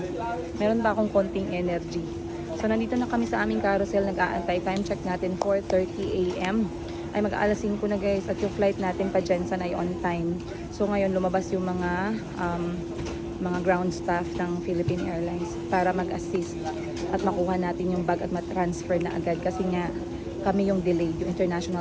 Meron pa akong konting energy. So nandito na kami sa aming carousel. Nag-aantay. Time check natin 4:30 AM. Ay mag-aalas 5 na guys. At yung flight natin pa Jensen ay on time. So ngayon lumabas yung mga ground staff ng Philippine Airlines para mag-assist at makuha natin yung bag at matransfer na agad. Kasi nga kami yung delayed, yung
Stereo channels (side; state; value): both; identical; correlation 1.00